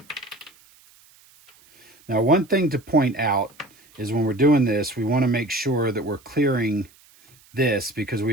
Now, one thing to point out is when we're doing this, we want to make sure that we're clearing this, because we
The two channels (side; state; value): right; noise; hiss, 28 dB below the sound